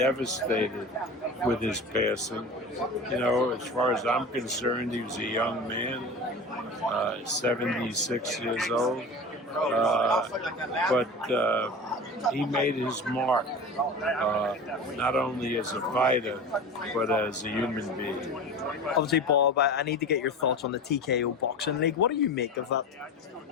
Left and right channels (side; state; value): both; normal; correlation 0.32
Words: with his passing. As far as I'm concerned, he was a young man, 76 years old. But he made his mark, not only as a fighter, but as a human being. Obviously, Bob, I need to get your thoughts on the TKO Boxing League. What do you make of that?